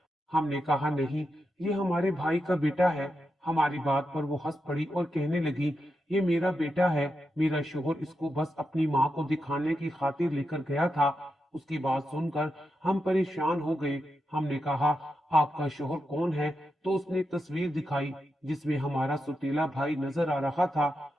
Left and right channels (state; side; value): normal; both; correlation 0.87